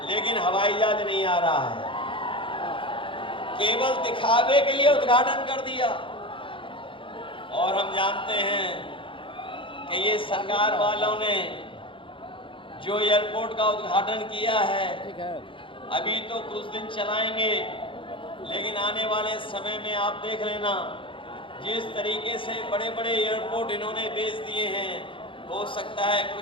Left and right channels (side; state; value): right; late; 0.25 ms